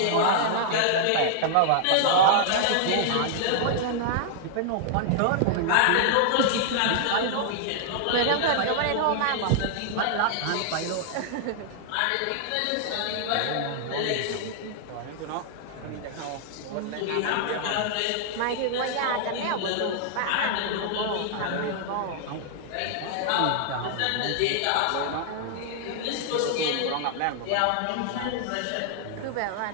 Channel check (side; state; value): both; different; correlation -0.01